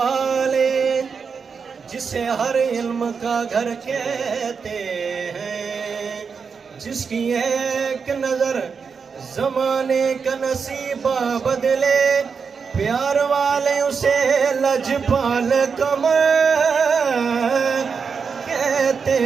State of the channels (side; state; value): left; quieter; 5.7 dB